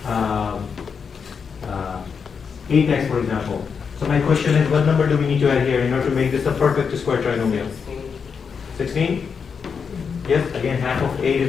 8x, for example. So my question is, what number do we need to add here in order to make this a perfect square trinomial? 16? Yes, again, half of 8 is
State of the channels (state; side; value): quieter; right; 6.1 dB